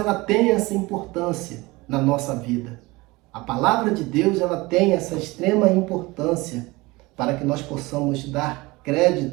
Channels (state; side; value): quieter; left; 22.3 dB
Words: tem essa importância na nossa vida. A palavra de Deus, ela tem essa extrema importância para que nós possamos dar